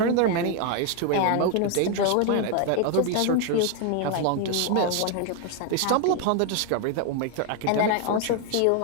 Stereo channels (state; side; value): different; both; correlation 0.00